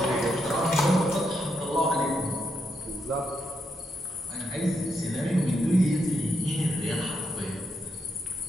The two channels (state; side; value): normal; both; correlation 0.81